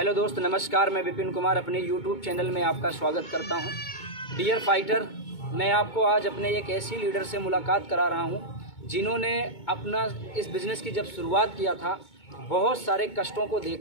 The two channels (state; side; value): late; right; 2.2 ms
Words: Hello दोस्त, नमस्कार। मैं विपिन कुमार अपने यूट्यूब चैनल में आपका स्वागत करता हूं। डियर फाइटर, मैं आपको आज अपने एक ऐसी लीडर से मुलाकात करा रहा हूं जिन्होंने अपना इस बिज़नेस की जब शुरुआत किया था बहुत सारे कष्टों को